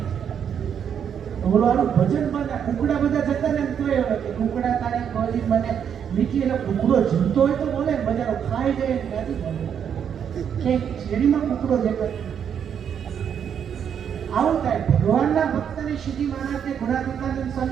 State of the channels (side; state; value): left; quieter; 8.2 dB